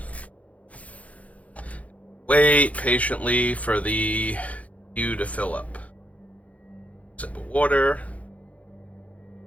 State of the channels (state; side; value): late; right; 0.067 ms